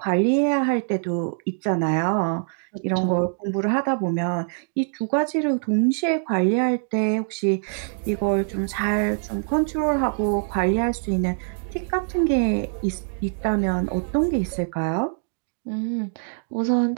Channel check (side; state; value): left; silent; 63 dB below the other